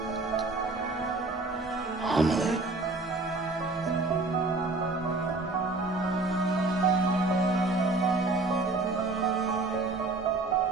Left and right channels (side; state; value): left; quieter; 3.2 dB